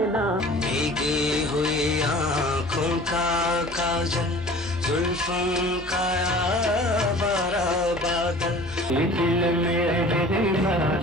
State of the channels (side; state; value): both; normal; correlation 0.45